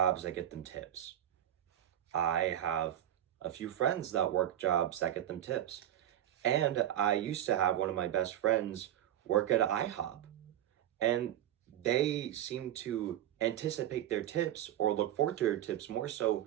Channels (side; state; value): left; quieter; 11.8 dB